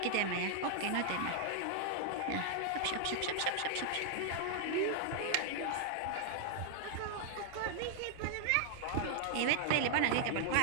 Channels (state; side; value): different; both; correlation 0.00